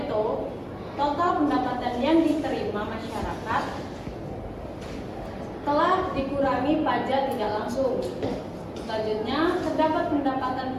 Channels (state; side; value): identical; both; correlation 1.00